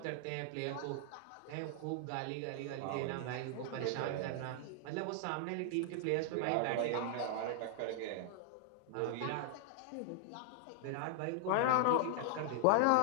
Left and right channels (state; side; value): different; both; correlation -0.01